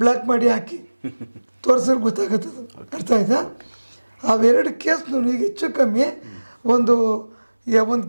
ಮಾಡಿ ಹಾಕಿ ತೋರಿಸಿದ್ರೆ ಗೊತ್ತಾಗುತ್ತದು. ಅರ್ಥ ಆಯ್ತಾ? ಅವೆರಡು ಕೇಸ್ನು ಈಗ ಹೆಚ್ಚು ಕಮ್ಮಿ ಒಂದು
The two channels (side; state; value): both; inverted; correlation -1.00